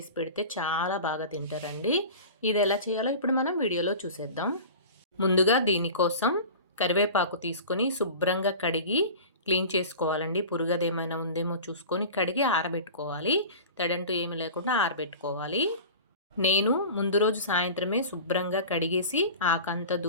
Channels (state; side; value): inverted; both; correlation -0.36